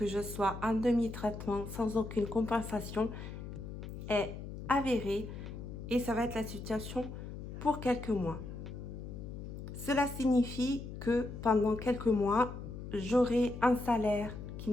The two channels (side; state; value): left; noise; hum, 9 dB below the sound